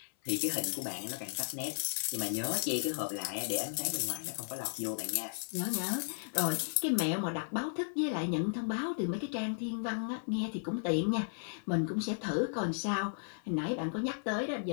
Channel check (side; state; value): right; silent; 55 dB below the other